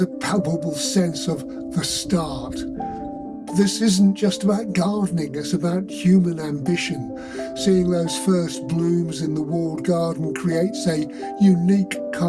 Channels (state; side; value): identical; both; correlation 1.00